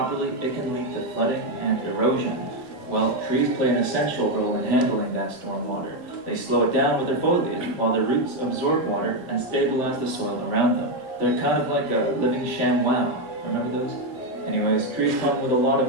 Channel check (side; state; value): both; normal; correlation 0.05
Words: it can lead to flooding and erosion. Well, trees play an essential role in handling that storm water. They slow it down with their foliage, while their roots absorb water and stabilize the soil around them. They're kind of like a living ShamWow. Remember those? Anyways, trees come with a lot